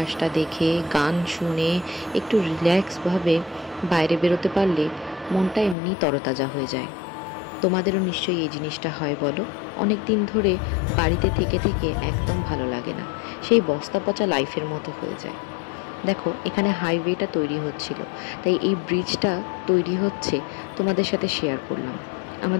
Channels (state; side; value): drops out; right; at 5.8 s